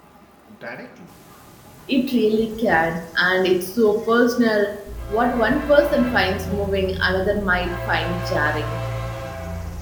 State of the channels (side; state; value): both; identical; correlation 1.00